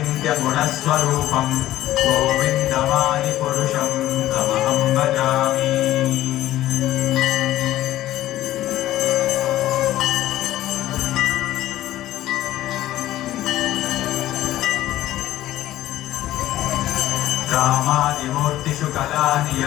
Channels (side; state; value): right; quieter; 14.4 dB